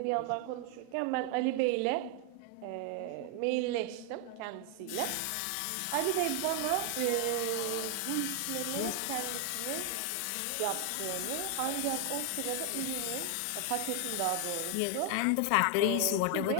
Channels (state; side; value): different; both; correlation 0.00